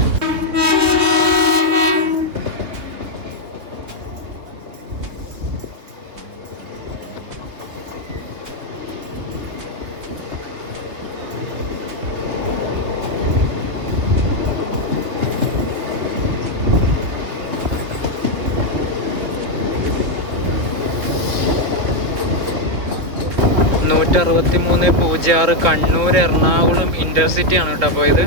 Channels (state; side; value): late; left; 3.8 ms